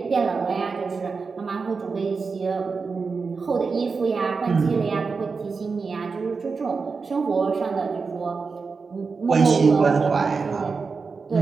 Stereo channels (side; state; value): left; quieter; 4.8 dB